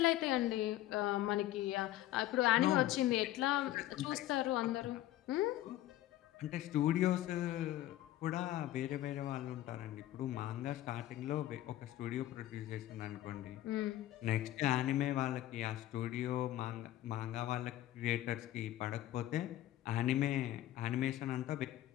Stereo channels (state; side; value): quieter; right; 14.3 dB